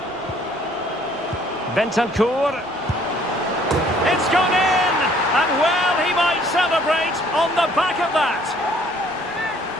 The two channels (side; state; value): right; noise; rumble, 27 dB below the sound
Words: Bentancur. It's gone in! And well, he might celebrate on the back of that.